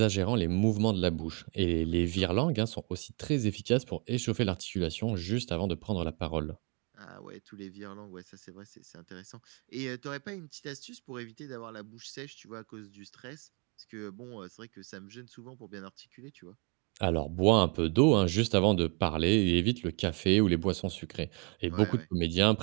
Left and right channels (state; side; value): quieter; left; 33.5 dB